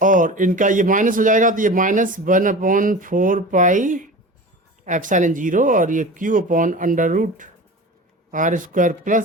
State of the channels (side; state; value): both; normal; correlation 0.34